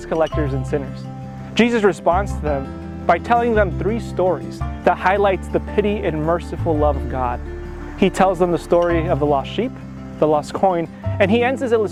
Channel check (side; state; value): both; identical; correlation 1.00